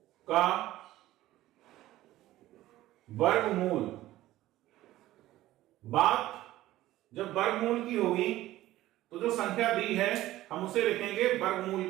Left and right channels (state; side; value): quieter; left; 15.5 dB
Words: का वर्गमूल, बात जब वर्गमूल की होगी तो जो संख्या दी है हम उसे लिखेंगे वर्गमूल